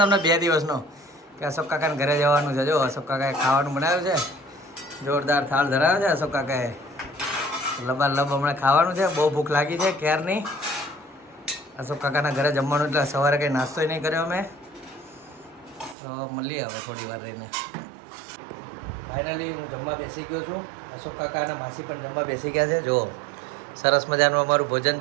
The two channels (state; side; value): drops out; left; at 16.0 s